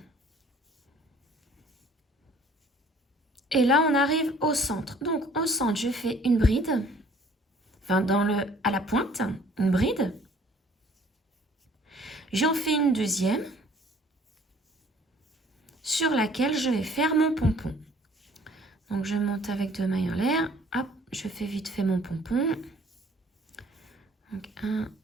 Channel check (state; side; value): normal; both; correlation 0.56